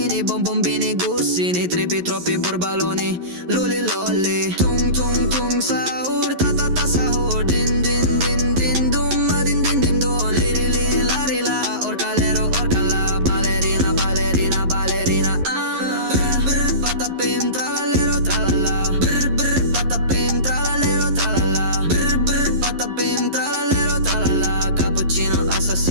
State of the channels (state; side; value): late; left; 11 ms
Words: bonbombini, gussini. Tripi, troppi borbaloni, luli lolli. Tung tung tung sahur, ta ta ta sahur. Din din din din dum, ma din din din dum. Liri li lari la, orcalero orcala. Ballerina, ballerina, ballerina. Ah. Brr brr patapim tralalero tralala. Brr brr patapim tralalero tralala. Brr brr patapim tralalero tralala. Cappuccino